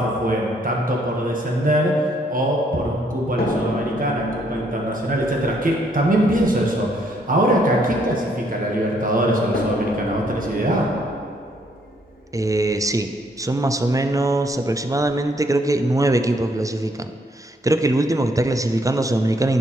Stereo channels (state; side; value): normal; both; correlation 0.69